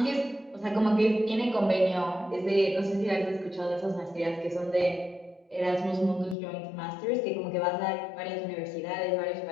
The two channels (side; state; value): right; drops out; at 6.4 s